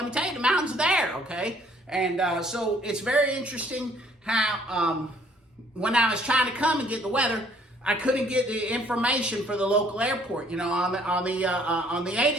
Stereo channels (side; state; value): both; normal; correlation 0.61